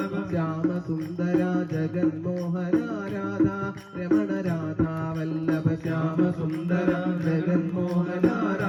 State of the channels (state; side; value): identical; both; correlation 1.00